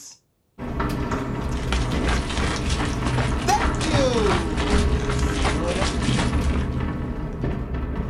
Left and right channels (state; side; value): identical; both; correlation 1.00